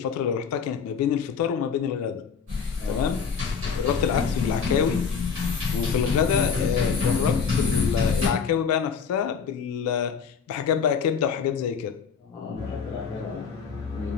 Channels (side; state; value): right; quieter; 6.2 dB